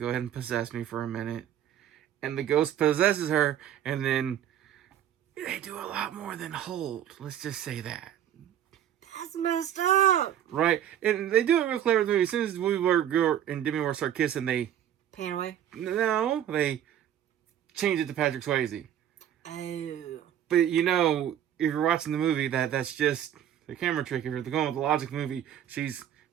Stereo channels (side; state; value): left; quieter; 10.6 dB